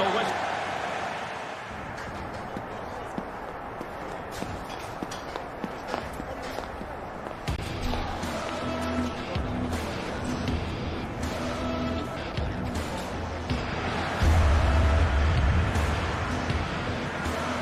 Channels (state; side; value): identical; both; correlation 1.00